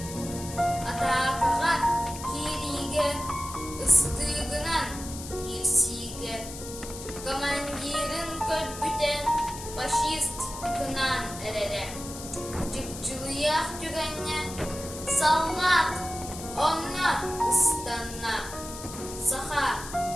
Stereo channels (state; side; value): noise; left; hiss, 11 dB below the sound